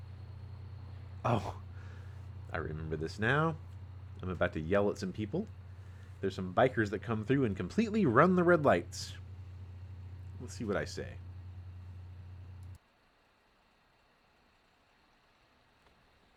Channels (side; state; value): both; identical; correlation 1.00